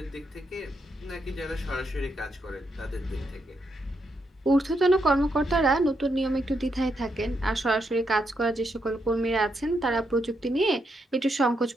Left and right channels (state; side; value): normal; both; correlation 0.80